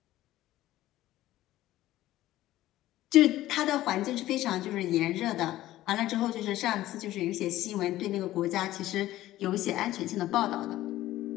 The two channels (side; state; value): right; quieter; 15.0 dB